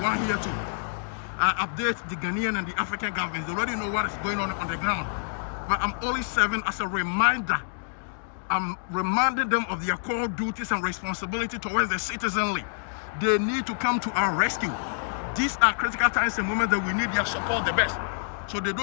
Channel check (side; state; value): right; silent; digital silence